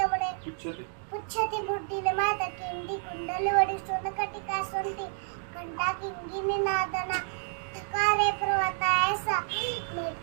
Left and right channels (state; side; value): silent; left; 56 dB below the other